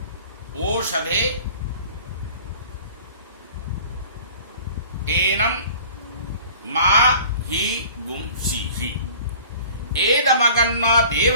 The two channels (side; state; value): both; inverted; correlation -0.46